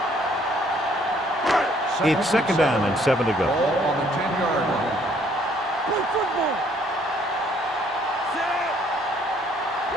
It's 2nd down and 7 to go. Ball on the 10-yard line. Play football. Set.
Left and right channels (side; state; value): both; normal; correlation 0.63